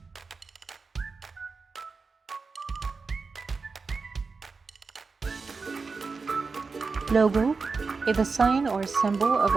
Logo is a sign or symbol of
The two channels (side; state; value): left; quieter; 4.5 dB